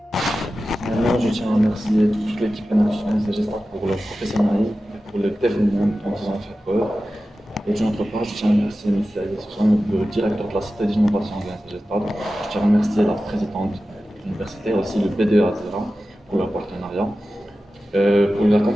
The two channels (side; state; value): both; normal; correlation 0.94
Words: Moi, je tiens à remercier toute l'équipe Enactus pour leur professionnalisme et pour le dévouement dont ils ont fait preuve. Et d'une autre part, je tiens à remercier M. Ali Soussan, le directeur de la Cité d'innovation de l'UNCG Stade. Je tiens à remercier la présidente de l'université et aussi le B2 Azira pour leur partenariat. Pour la